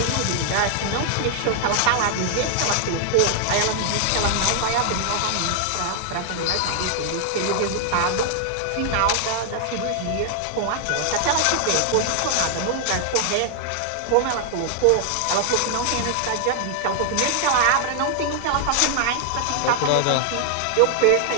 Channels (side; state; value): both; different; correlation 0.00